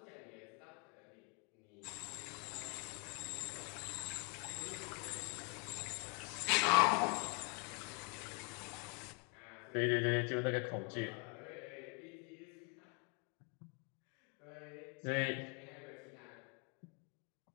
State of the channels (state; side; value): quieter; right; 33.9 dB